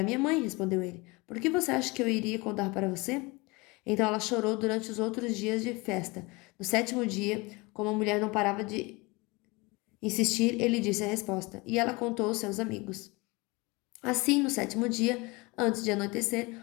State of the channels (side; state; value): right; quieter; 25.2 dB